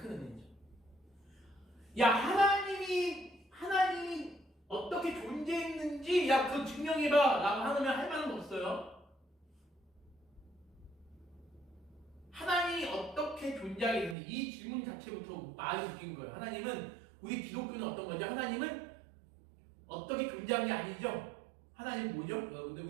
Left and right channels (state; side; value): drops out; left; at 14.2 s